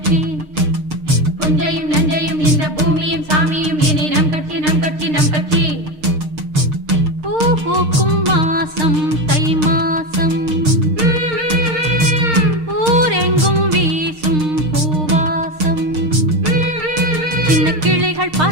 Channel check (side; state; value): left; late; 6.6 ms